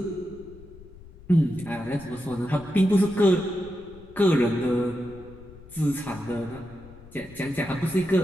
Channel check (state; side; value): noise; left; rumble, 20 dB below the sound